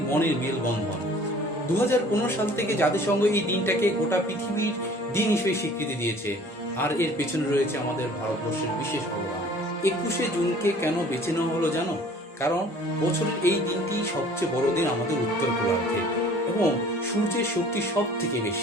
মনের মেলবন্ধন। 2015 সাল থেকে জাতিসংঘ এই দিনটাকে গোটা পৃথিবীর দিন হিসেবে স্বীকৃতি দিয়েছে, আর এর পেছনে রয়েছে আমাদের ভারতবর্ষের বিশেষ অবদান। 21শে জুনকে কেন বেছে নেওয়া হলো জানো? কারণ বছরের এই দিনটি সবচেয়ে বড় দিন আমাদের উত্তর গোলার্ধে, এবং সূর্যের শক্তি সব থেকে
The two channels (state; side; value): normal; both; correlation 0.51